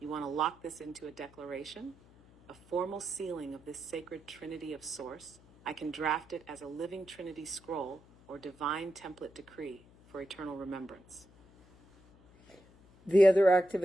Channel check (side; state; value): left; noise; hum, 25 dB below the sound